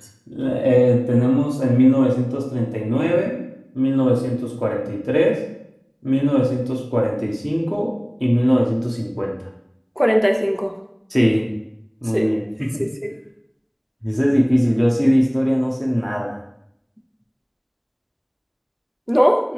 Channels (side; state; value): both; identical; correlation 1.00